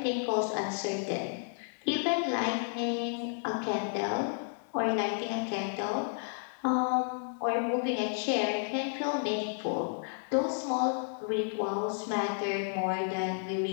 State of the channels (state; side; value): silent; right; digital silence